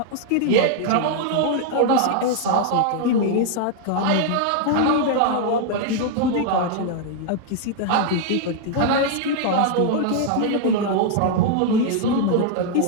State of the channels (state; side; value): different; both; correlation 0.00